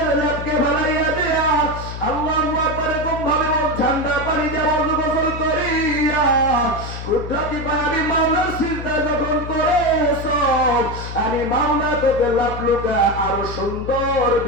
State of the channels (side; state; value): left; noise; hum, 8 dB below the sound